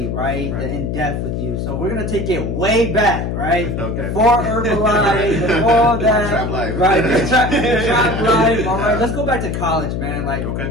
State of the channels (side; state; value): left; noise; hum, 2 dB below the sound